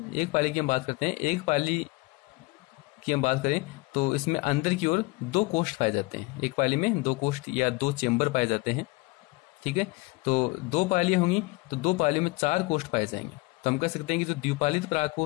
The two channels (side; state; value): right; quieter; 24.1 dB